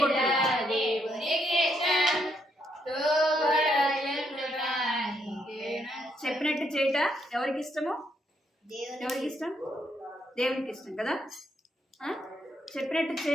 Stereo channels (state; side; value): normal; both; correlation 0.76